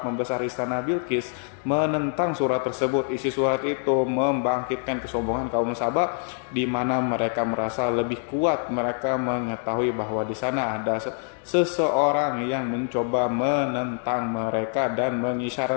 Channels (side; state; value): right; silent; 58 dB below the other